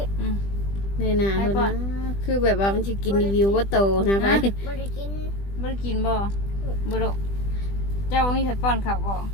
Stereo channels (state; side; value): late; right; 20 ms